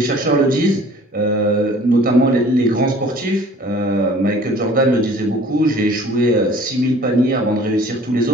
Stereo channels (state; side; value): normal; both; correlation 0.50